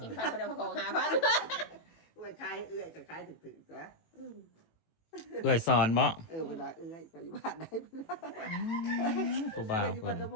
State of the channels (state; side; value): late; right; 18 ms